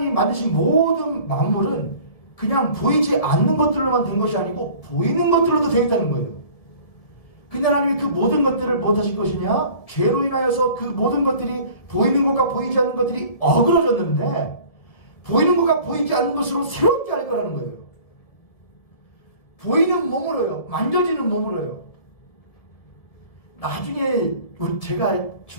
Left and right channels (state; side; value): late; right; 1.8 ms